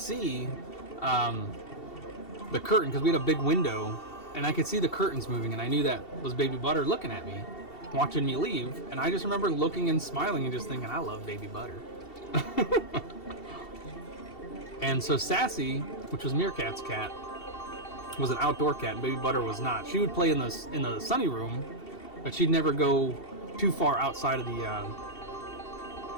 the curtain, because we had a big window, and I could see the curtains moving, and I knew that was Baby Butter looking at me, watching me leave. And I just remember looking and smiling and just thinking, I love Baby Butter. And so Sassy, which was Meerkat's cat, was an outdoor cat, and Baby Butter was not. She would play in the sunny room, but she'd never go too far outside of the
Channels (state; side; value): late; right; 2.7 ms